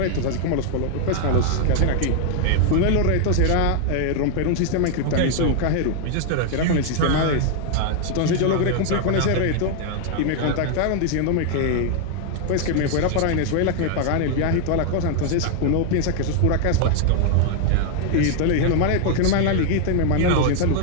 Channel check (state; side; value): different; both; correlation 0.00